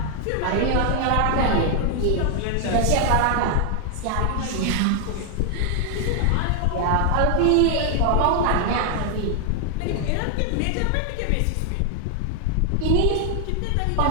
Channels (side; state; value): both; different; correlation 0.00